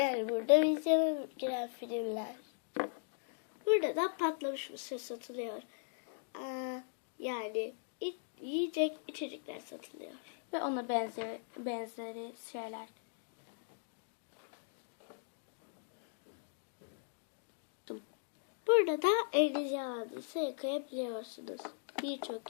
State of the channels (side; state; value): right; silent; digital silence